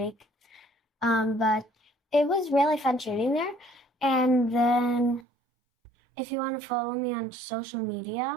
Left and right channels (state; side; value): drops out; left; at 5.2 s